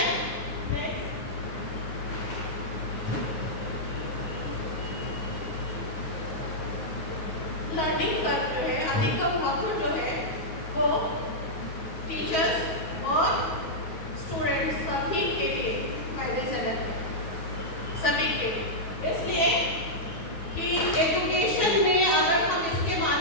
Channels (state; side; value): late; right; 9.2 ms